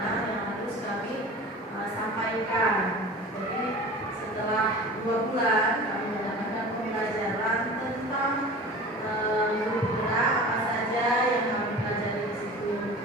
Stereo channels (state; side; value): normal; both; correlation 0.38